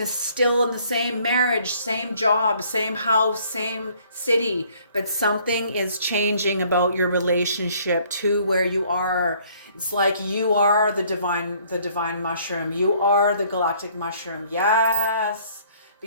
still in the same marriage, same job, same house, same city, but something is changing about your relationship to where you are. It's like you are the divine mushroom. You are the galactic mushroom. Yes,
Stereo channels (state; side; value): inverted; both; correlation -0.60